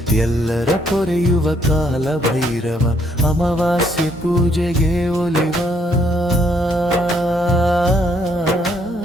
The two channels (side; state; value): both; normal; correlation 0.70